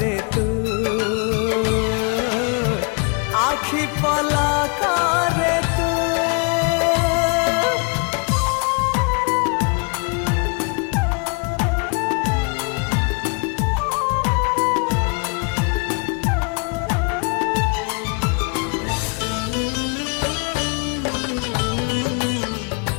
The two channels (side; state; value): right; quieter; 35.9 dB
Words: तू आखि पलकरे